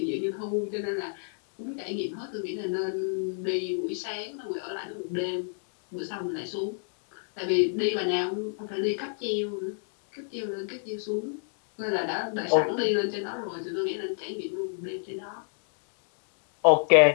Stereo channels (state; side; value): silent; right; digital silence